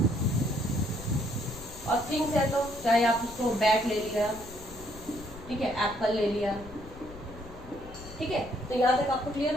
और थिंग्स है तो चाहे आप उसको बैट ले लिया, ठीक है, एप्पल ले लिया, ठीक है। तो यहाँ तक आपको क्लियर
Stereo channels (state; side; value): noise; left; rumble, 16 dB below the sound